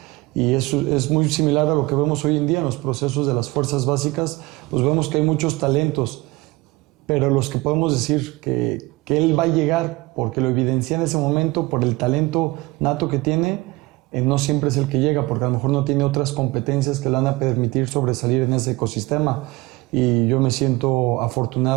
Y eso es muy similar a lo que vemos hoy en día en los procesos de las fuerzas básicas. Pues vemos que hay muchos talentos, pero los que podemos decir que él va a llegar porque lo evidencia en ese momento por el talento nato que tiene, no siempre es el que llega, porque a lo mejor no tiene otras competencias que le van a permitir sobresalir en ese ecosistema. Y yo me siento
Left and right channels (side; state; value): left; quieter; 21.9 dB